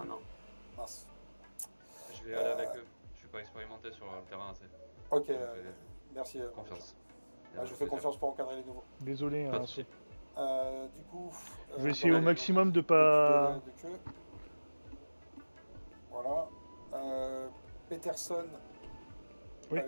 non. Mince. Je vais aller avec eux. Je suis pas expérimenté sur le terrain assez. Ok, Donc, merci. confiance. Je vous fais confiance pour encadrer les nouveaux. Désolé, Pas hein, de soucis. Du coup, je vais essayer au dans maximum de l'équipe pas. de queue. Voilà. Peterson Oui.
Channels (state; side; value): inverted; both; correlation -1.00